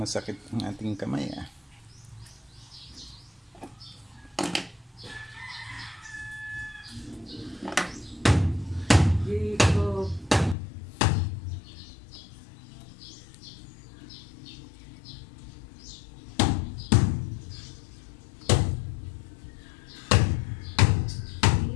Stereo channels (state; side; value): drops out; right; at 10.6 s